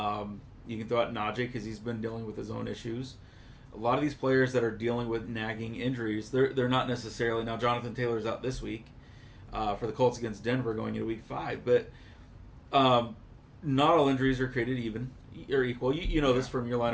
you can throw out Najee because he's been dealing with his own issues. A lot of these players that are dealing with nagging injuries, they're not necessarily, now Jonathan Taylor's out this week for the Colts against Denver going into week 5, but not all injuries are created even or equal. You know this from your line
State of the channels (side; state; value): both; identical; correlation 1.00